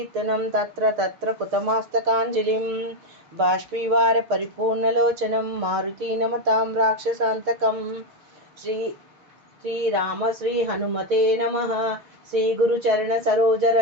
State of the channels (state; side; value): late; left; 6.6 ms